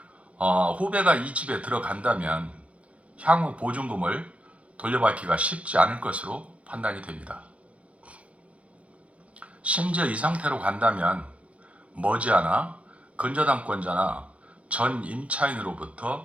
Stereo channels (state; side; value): late; left; 0.064 ms